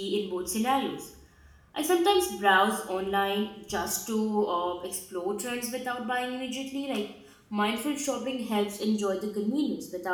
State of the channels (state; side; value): identical; both; correlation 1.00